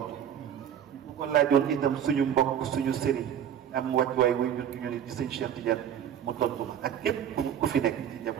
bu ko laajoon itam suñu mbokk suñu sëriñ am wàccuwaay wuy jur gi ñu ne di sëñ Cheikh Tidiane mu tontu ma ak képp ku fi nekk ci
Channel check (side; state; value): left; quieter; 9.4 dB